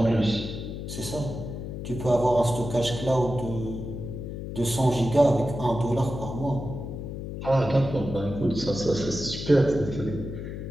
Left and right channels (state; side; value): noise; left; hum, 7 dB below the sound